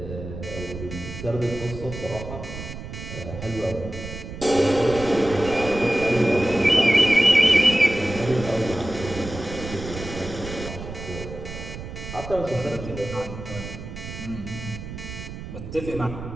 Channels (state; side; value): noise; right; rumble, 10 dB below the sound